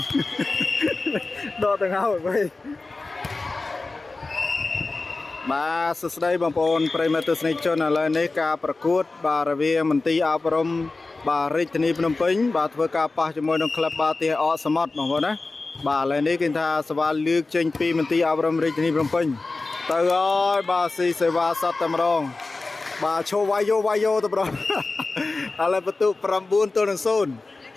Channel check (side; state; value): right; quieter; 3.5 dB